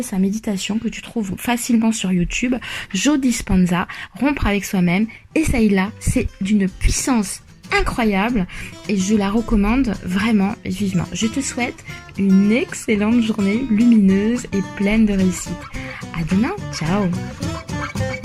sa méditation que tu trouves facilement sur YouTube, Joe Dispenza, Rompre avec soi-même. Essaye-la, c'est d'une puissance incroyable et je la recommande vraiment vivement. Je te souhaite une excellente journée lumineuse et pleine de réussite. À demain, ciao!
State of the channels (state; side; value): identical; both; correlation 1.00